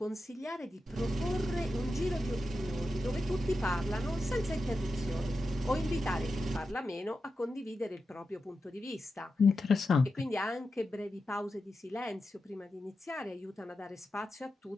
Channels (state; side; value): normal; both; correlation 0.90